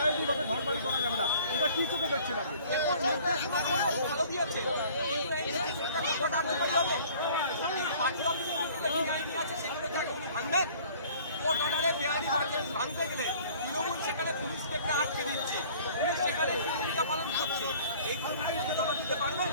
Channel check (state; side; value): inverted; both; correlation -0.52